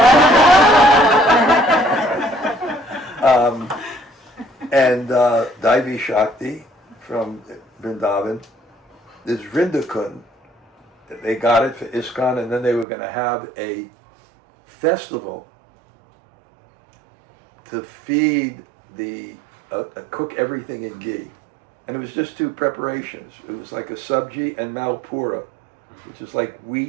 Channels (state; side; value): drops out; left; at 12.9 s